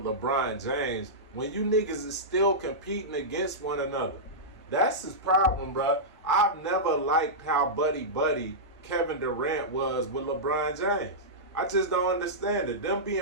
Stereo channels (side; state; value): both; normal; correlation -0.13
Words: LeBron James when you niggas is still competing against one another? That's his problem, bruh. I've never liked how buddy-buddy Kevin Durant was with LeBron James. I just don't understand it. Them